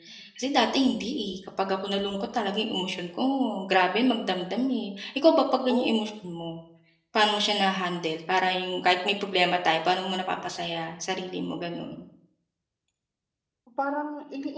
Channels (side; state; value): both; identical; correlation 1.00